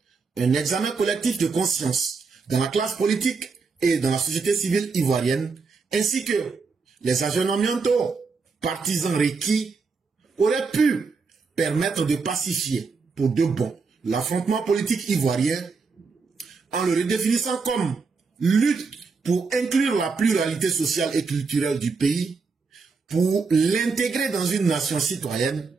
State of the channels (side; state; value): left; quieter; 4.7 dB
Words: un examen collectif de conscience dans la classe politique et dans la société civile ivoirienne, ainsi que les aggiornaments partisans requis, auraient pu permettre de pacifier pour de bon l'affrontement politique ivoirien en le redéfinissant comme lutte pour inclure la pluralité sociale et culturelle du pays, pour l'intégrer dans une nation citoyenne,